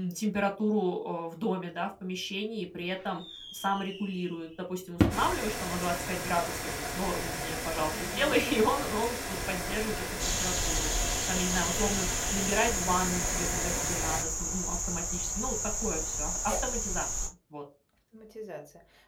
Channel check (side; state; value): both; identical; correlation 1.00